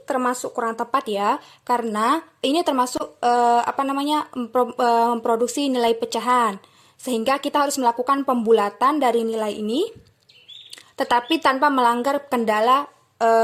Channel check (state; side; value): identical; both; correlation 1.00